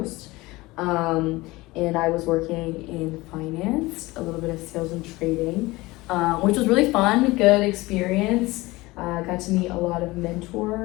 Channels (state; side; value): quieter; right; 20.7 dB